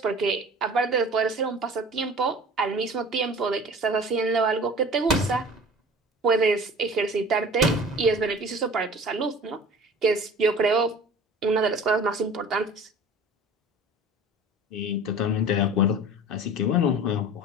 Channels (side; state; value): both; normal; correlation 0.42